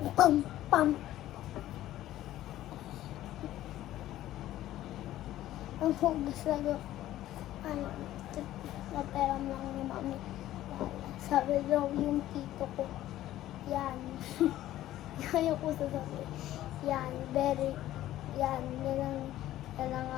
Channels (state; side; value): quieter; right; 14.0 dB